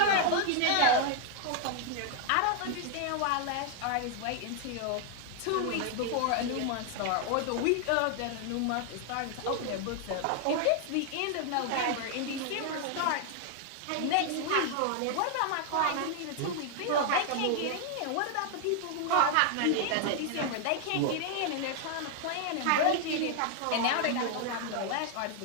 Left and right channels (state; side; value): different; both; correlation 0.00